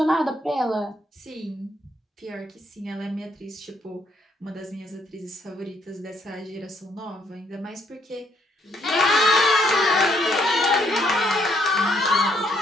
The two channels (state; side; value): normal; both; correlation 0.70